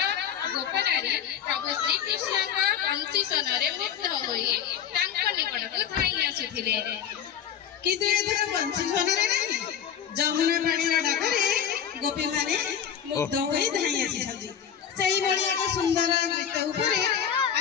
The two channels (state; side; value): quieter; right; 8.8 dB